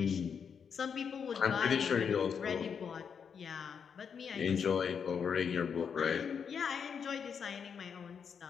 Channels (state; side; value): quieter; right; 6.8 dB